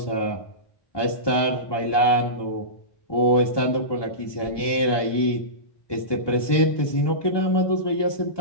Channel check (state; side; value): late; right; 1.2 ms